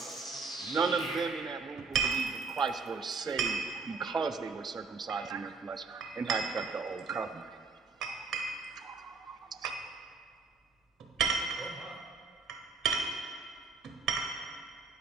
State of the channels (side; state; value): left; quieter; 4.5 dB